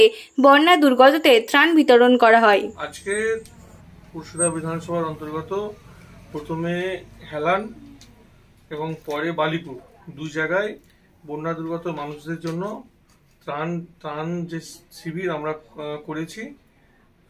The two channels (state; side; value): identical; both; correlation 1.00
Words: বন্যা দুর্গতদের ত্রাণ বিতরণ করা হয়। আজকে পুরসুরা বিধানসভার অন্তর্গত প্রথমে হেলান এবং পরে বালিপুর দুই জায়গায় বন্যা দুর্গত মানুষদের জন্য ত্রাণ যে শিবির আমরা করেছি